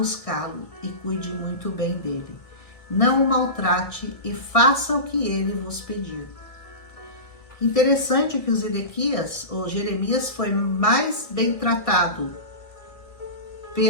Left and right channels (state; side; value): late; right; 1.6 ms